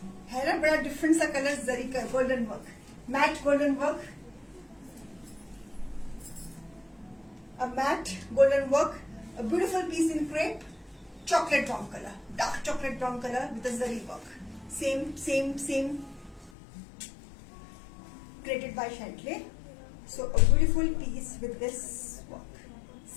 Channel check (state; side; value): drops out; right; at 16.5 s